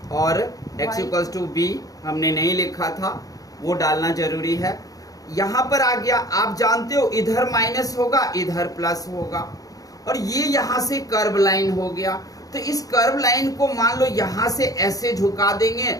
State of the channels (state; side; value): late; right; 0.17 ms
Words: और x इक्वल्स टू b हमने नहीं लिखा था, वो डालना जरूरी है। यहां पर आ गया, आप जानते हो इधर माइनस होगा, इधर प्लस होगा, और ये यहां से कर्व लाइन हो गया। तो इस कर्व लाइन को मान लो यहां से ऐसे झुका देंगे